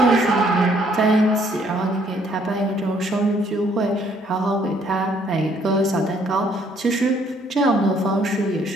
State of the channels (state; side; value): normal; both; correlation 0.65